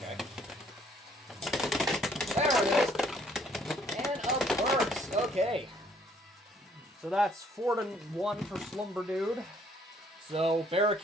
There it is. And a burst. Okay. So that's 4-1 for Slumber Dude. So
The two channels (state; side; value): normal; both; correlation 0.64